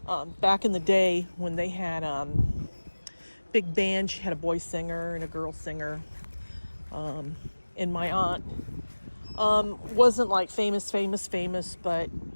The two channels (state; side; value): inverted; both; correlation -1.00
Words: back in the day when they had big band, she had a boy singer and a girl singer. And my aunt wasn't like famous, but